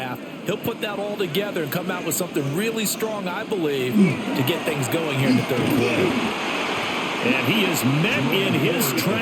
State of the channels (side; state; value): both; identical; correlation 1.00